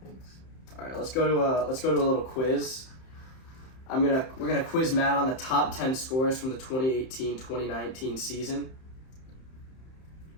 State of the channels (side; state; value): right; late; 31 ms